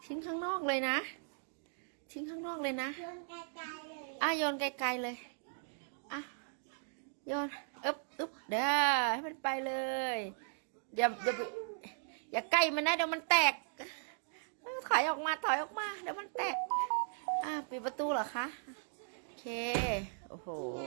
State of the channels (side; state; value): left; silent; digital silence